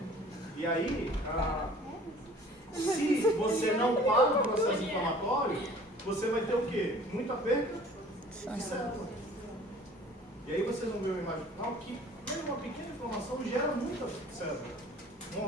E aí, se você não para o processo inflamatório, você vai ter o quê? Muita perda de célula. E aí vocês vão ver uma imagem final que mesmo uma pequena inflamação gera muita célula,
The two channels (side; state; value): both; normal; correlation 0.50